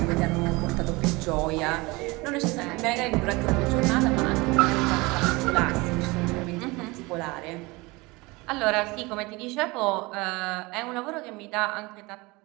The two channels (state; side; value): quieter; left; 23.8 dB